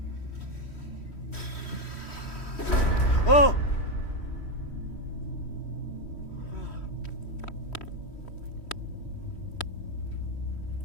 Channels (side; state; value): right; late; 3.1 ms